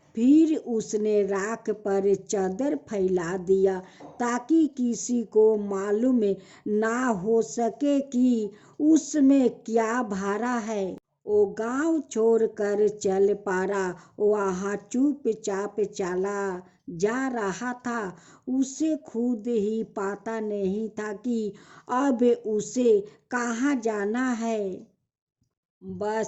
फिर उसने राख पर चादर फैला दिया ताकि किसी को मालूम ना हो सके कि उसमें क्या भरा है। वो गांव छोड़कर चल पड़ा। वहाँ चुपचाप चला जा रहा था। उसे खुद ही पता नहीं था कि अब उसे कहाँ जाना है।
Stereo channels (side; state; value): both; identical; correlation 1.00